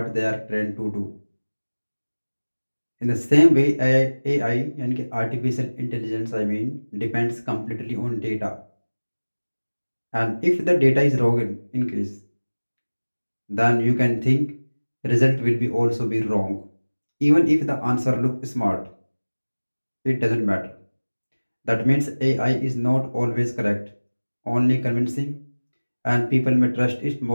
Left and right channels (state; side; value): inverted; both; correlation -1.00